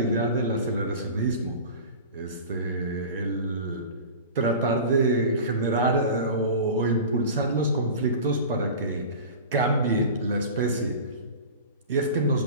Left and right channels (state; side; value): inverted; both; correlation -0.35